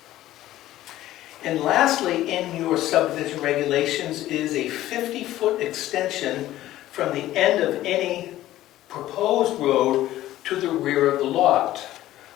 And lastly, in your subdivision regulations is a 50-foot extension from the end of any proposed road to the rear of the lot.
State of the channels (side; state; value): right; quieter; 14.5 dB